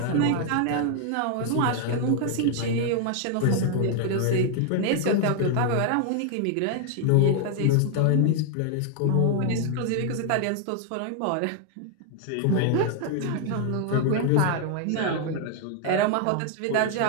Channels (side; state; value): both; different; correlation 0.00